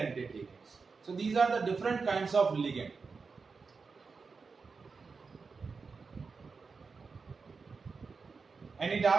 ligands. So these are the different kinds of ligand. Any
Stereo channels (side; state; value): left; quieter; 4.8 dB